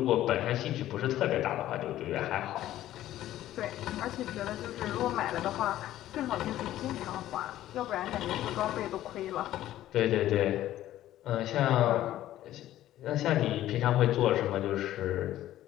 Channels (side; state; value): right; quieter; 13.6 dB